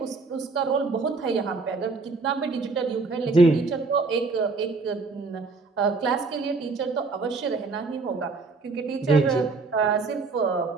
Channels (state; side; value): quieter; left; 4.0 dB